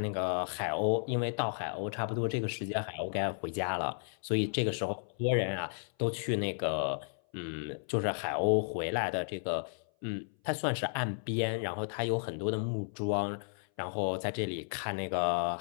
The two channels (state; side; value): silent; right; 55 dB below the other